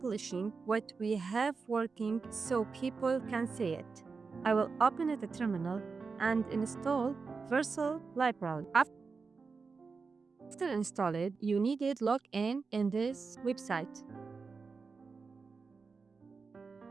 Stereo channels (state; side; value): quieter; left; 4.7 dB